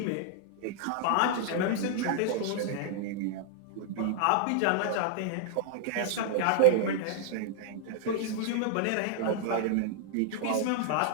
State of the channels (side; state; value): both; different; correlation -0.01